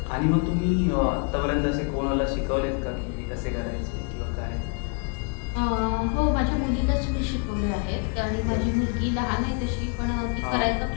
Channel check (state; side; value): quieter; right; 35.4 dB